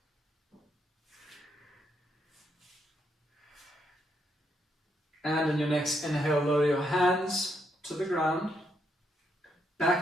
And in your next inhale, lower your hands to the ground.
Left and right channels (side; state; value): both; normal; correlation 0.77